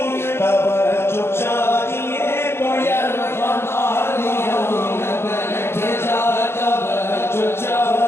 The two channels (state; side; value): late; right; 0.12 ms